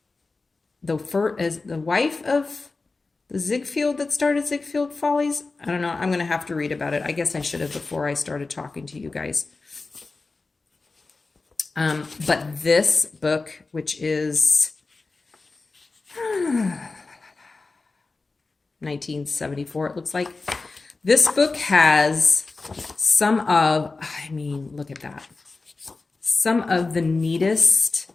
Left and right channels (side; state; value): right; quieter; 3.8 dB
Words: the wife of the Ziegfeld that started Ziegfeld Follies? I don't know. I'm going to have to read about it. I guess I should have before I started talking to you guys. But this book, which is 1974, it looks like. This book has some of, look at that. Some of the neatest